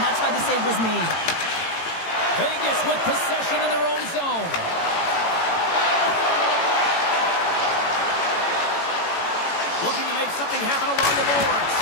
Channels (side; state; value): right; late; 18 ms